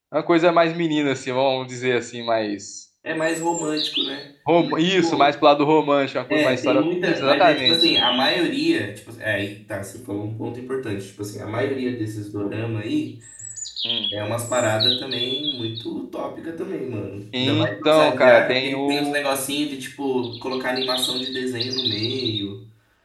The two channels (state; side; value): identical; both; correlation 1.00